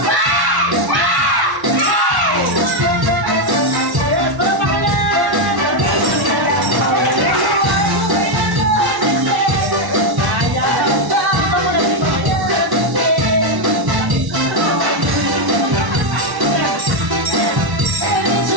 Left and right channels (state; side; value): late; left; 1.1 ms